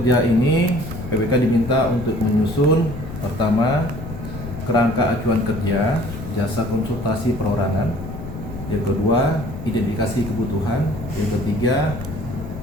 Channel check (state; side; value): noise; left; rumble, 10 dB below the sound